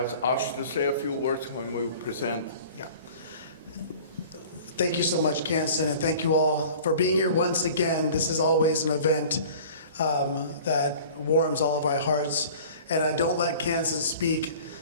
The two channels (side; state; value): both; inverted; correlation -0.44